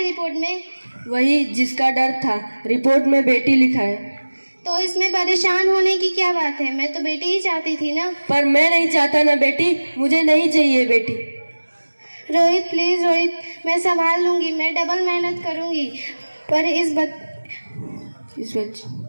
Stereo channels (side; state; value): both; inverted; correlation -1.00